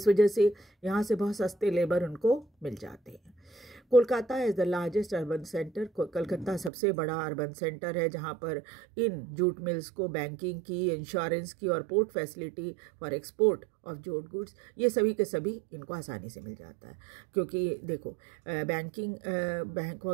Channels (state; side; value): drops out; left; at 6.7 s